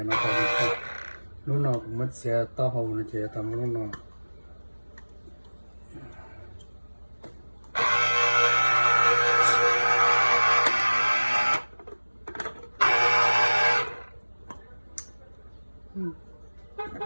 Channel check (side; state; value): both; inverted; correlation -1.00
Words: nó còn lúc nào cũng mất xe to hồ nó chỉ tầm lúc nào.